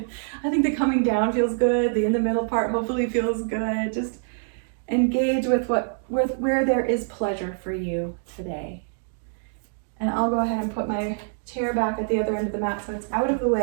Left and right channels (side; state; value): left; silent; digital silence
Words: think the coming down feels good. The in the middle part hopefully feels good. Just engage with where there is pleasure for you today. And I'll go ahead and put my chair back at the other end of the mat so it's out of the